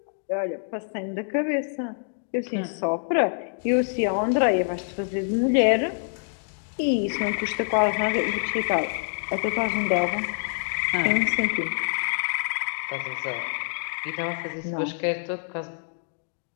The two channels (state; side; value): silent; right; digital silence